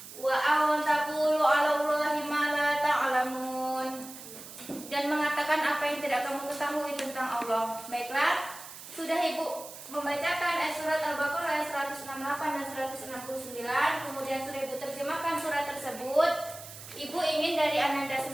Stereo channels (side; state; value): right; noise; hiss, 14 dB below the sound